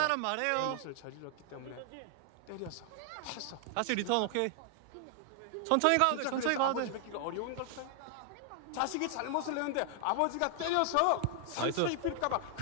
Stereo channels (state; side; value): different; both; correlation 0.00